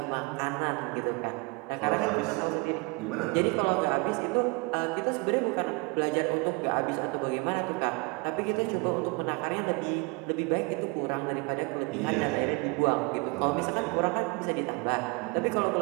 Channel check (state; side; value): quieter; left; 28.9 dB